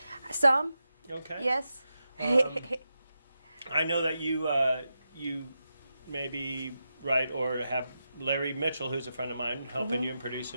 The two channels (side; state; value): both; inverted; correlation -0.88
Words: Some. Okay. Yes. I know that you maybe write or have Larry Mitchell, who's a friend of mine, helping you and